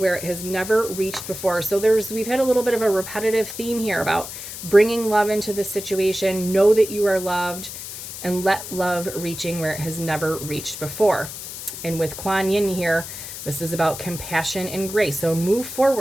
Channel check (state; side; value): noise; left; hiss, 10 dB below the sound